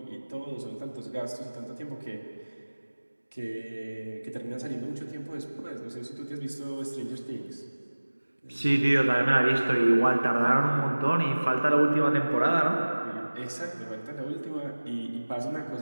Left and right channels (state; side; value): inverted; both; correlation -1.00